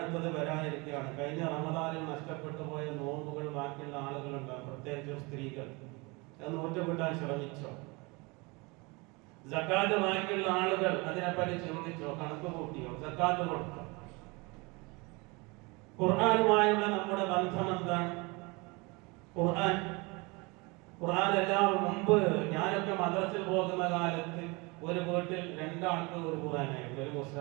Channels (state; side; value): quieter; left; 26.8 dB